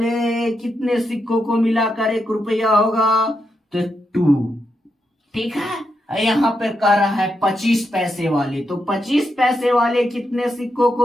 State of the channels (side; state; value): both; normal; correlation 0.83